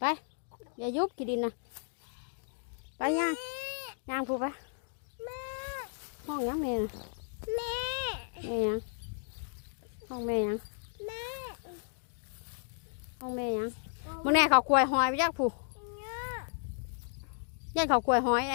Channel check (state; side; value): silent; right; digital silence